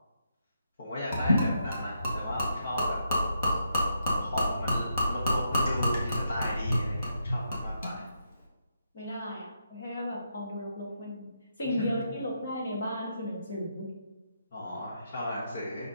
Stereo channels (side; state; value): both; inverted; correlation -0.80